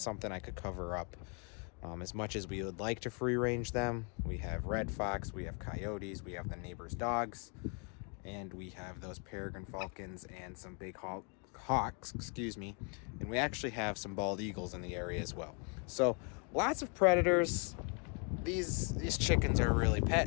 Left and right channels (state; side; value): quieter; right; 37.3 dB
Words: something I could cover up. As much as we would like to free range them, we have red fox, we have coyotes, we have the neighbor's dogs, and we have those peregrine falcons and some big hawks, and we actually have some bald eagles in the area as well. So lots of predators. These chickens are really